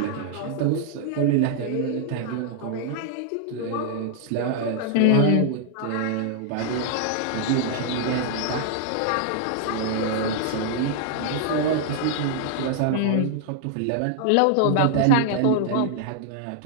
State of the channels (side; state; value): both; different; correlation -0.01